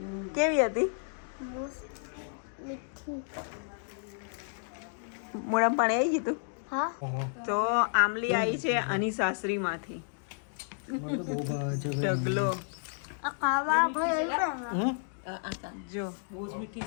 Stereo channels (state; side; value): silent; right; digital silence